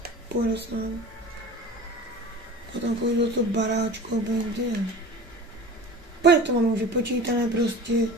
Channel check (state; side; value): normal; both; correlation 0.37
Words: půjde se nám. Potom půjdu do toho baráčku, obejím kde. Pojď to mám už vypočítané prostě.